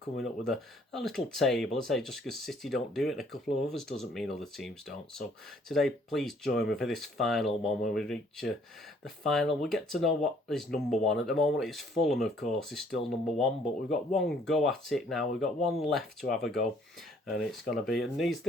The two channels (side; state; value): both; normal; correlation 0.62